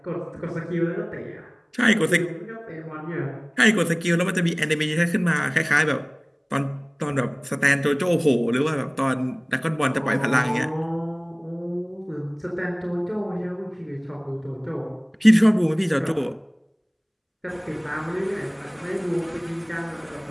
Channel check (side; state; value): both; identical; correlation 1.00